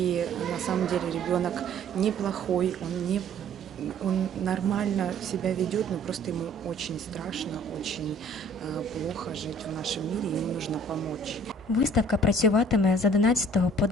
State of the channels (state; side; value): normal; both; correlation 0.53